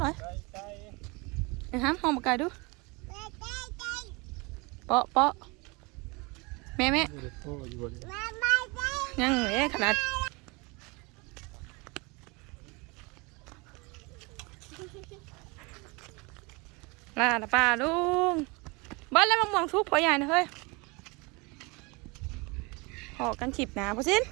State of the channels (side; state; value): left; quieter; 27.4 dB